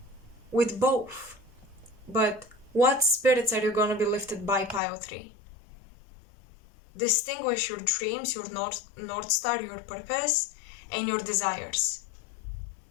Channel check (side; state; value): right; drops out; at 4.8 s